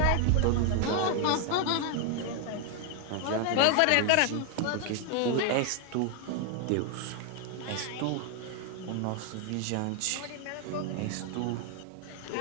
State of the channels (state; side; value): different; both; correlation 0.00